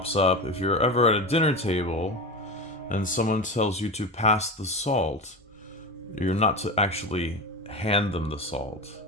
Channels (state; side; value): normal; both; correlation 0.24